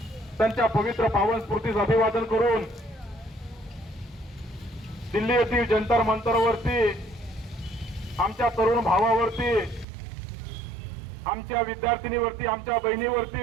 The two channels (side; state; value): left; drops out; at 9.9 s